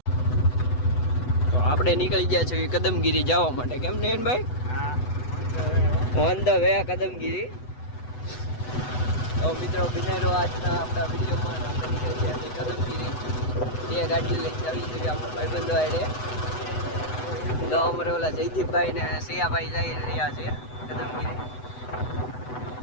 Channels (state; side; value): late; right; 8.0 ms